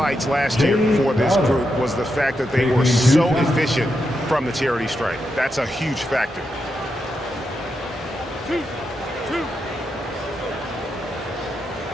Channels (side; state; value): both; normal; correlation 0.85